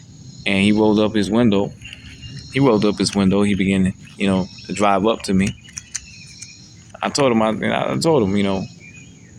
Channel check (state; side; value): identical; both; correlation 1.00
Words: And he rolled up his window. He began to drive up to me. I told him, I